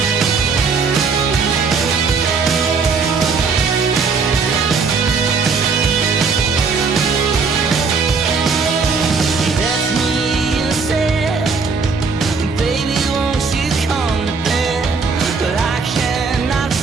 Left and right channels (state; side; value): quieter; left; 4.9 dB